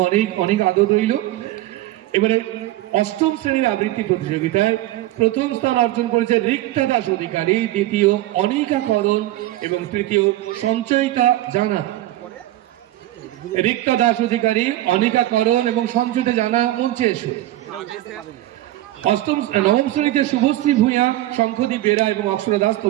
অনেক অনেক আদর রইল। এবারে অষ্টম শ্রেণীর আবৃত্তি প্রতিযোগিতায় প্রথম স্থান অর্জন করেছে রিক্তা দাস অধিকারী, দ্বিতীয় অনিকা করণ এবং তৃতীয় সঞ্চয়িতা জানা। রিক্তা দাস অধিকারী, অনিকা করণ এবং সঞ্চয়িতা জানা মঞ্চে এসো। নবম শ্রেণীতে শুভশ্রী ভূঁইয়া, শঙ্খদীপ বেরা এবং অক্ষরা দাস,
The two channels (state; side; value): quieter; left; 15.7 dB